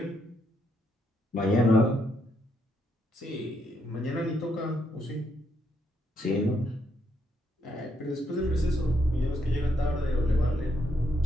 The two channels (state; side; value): normal; both; correlation 0.76